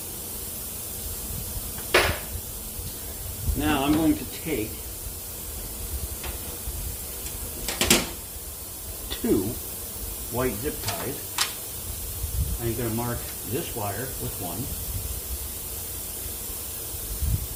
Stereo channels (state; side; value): identical; both; correlation 1.00